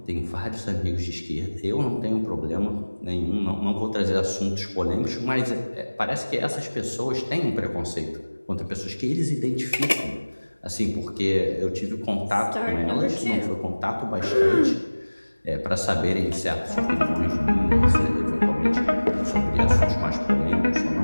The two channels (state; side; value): inverted; both; correlation -1.00